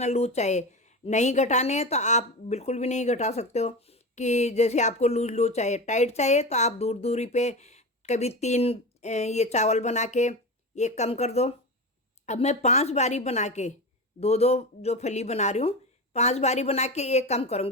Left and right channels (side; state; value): both; normal; correlation 0.24